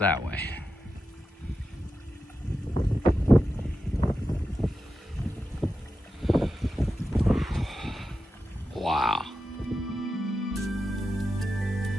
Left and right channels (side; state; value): both; normal; correlation 0.90